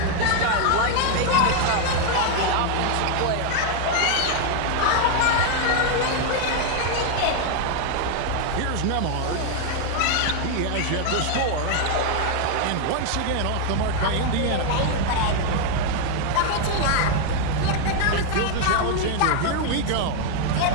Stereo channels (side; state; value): both; different; correlation 0.00